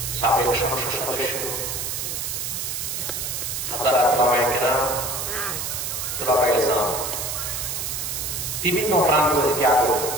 সাবেক সংসদ সদস্য, হাজারাত ওলামায়ে কেরাম, তুলাবায়ে ইসলাম, বিভিন্ন প্রান্ত থেকে আগত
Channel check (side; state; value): right; noise; hiss, 3 dB below the sound